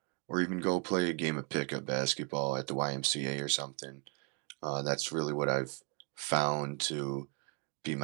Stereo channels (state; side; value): quieter; left; 34.4 dB